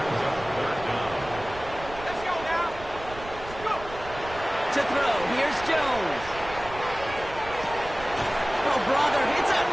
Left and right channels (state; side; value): noise; right; rumble, 14 dB below the sound